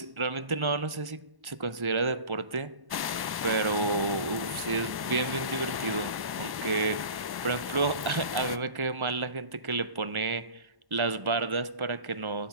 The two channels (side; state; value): left; late; 1.1 ms